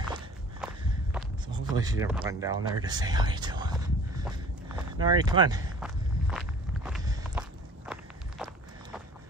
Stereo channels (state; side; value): normal; both; correlation 0.47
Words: so hopefully she didn't run down there to say hi to them. Nari, come on.